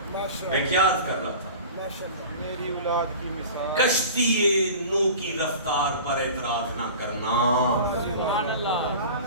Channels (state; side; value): inverted; both; correlation -0.38